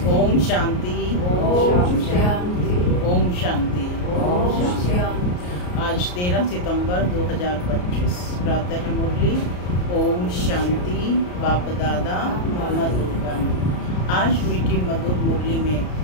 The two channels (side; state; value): right; late; 34 ms